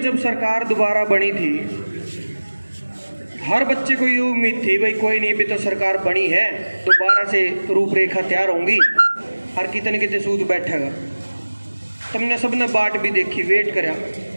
जब सरकार दोबारा बनी थी, हर बच्चे को ये उम्मीद थी भाई कोई नहीं, भी तो सरकार बनी है, दोबारा से रूपरेखा तैयार होंगी, हर कितने सूद बैठेगा। तुमने सबने बाट भी देखी, वेट करया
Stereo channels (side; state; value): both; inverted; correlation -1.00